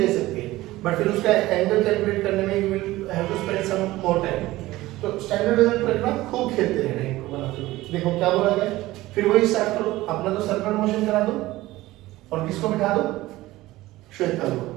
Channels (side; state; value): left; quieter; 17.6 dB